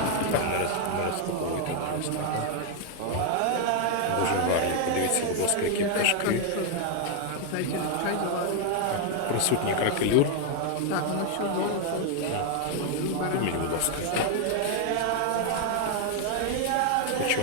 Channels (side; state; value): both; different; correlation 0.00